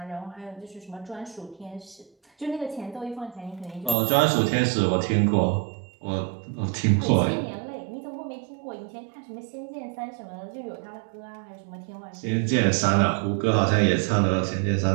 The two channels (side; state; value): left; drops out; at 4.0 s